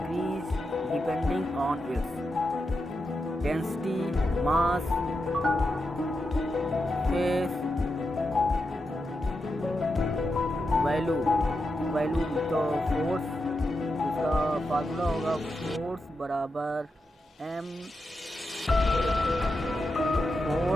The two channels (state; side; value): normal; both; correlation 0.87